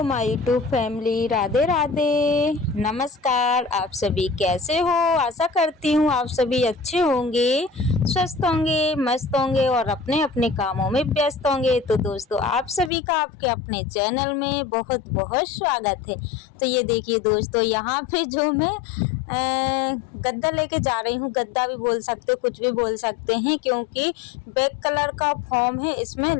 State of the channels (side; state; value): right; drops out; at 12.9 s